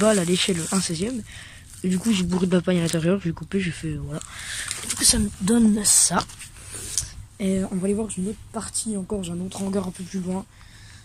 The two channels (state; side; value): identical; both; correlation 1.00